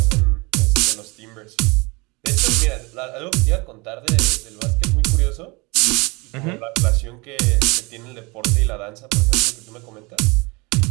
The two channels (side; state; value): left; quieter; 26.5 dB